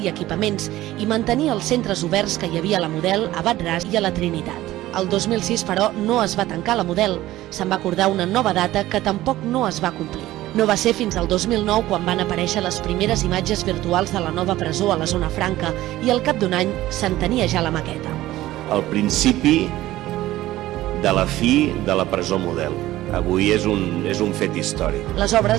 i equipaments i mantenir els centres oberts que hi havia a la Model, a Bat-ras i a la Trinitat. El 2006, però, no es va tancar la Model. Se'n va acordar una nova data que tampoc no es va complir. No va ser fins al 2009 quan van aparèixer les primeres imatges virtuals de la nova presó a la Zona Franca i al cap d'un any se'n tenia ja la maqueta. El principi de la fi de la presó Model. Avui és un fet històric. Les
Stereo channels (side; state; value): left; quieter; 15.7 dB